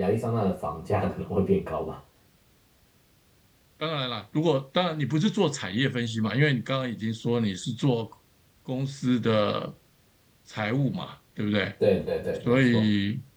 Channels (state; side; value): identical; both; correlation 1.00